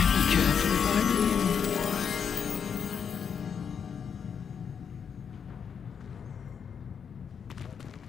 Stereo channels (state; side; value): quieter; right; 7.1 dB